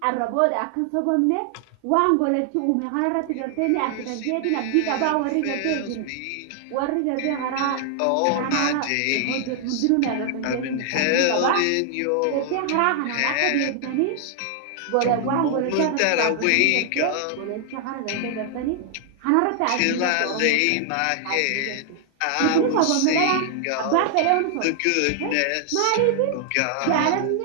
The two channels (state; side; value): different; both; correlation 0.00